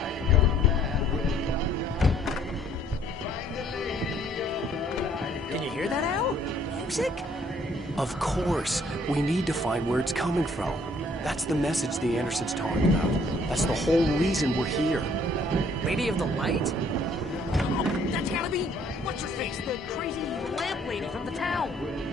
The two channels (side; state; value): both; normal; correlation 0.62